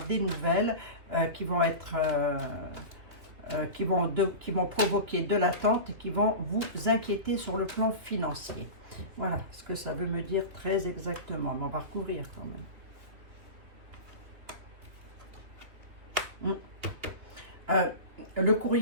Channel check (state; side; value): late; left; 3.1 ms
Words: des nouvelles qui vont être, qui vont provoquer de l'attente et qui vont vous inquiéter sur le plan financier. Voilà ce que ça veut me dire très exactement. Mais on va recouvrir quand même. Le